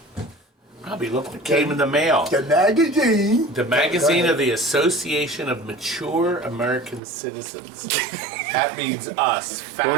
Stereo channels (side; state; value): left; drops out; at 7.0 s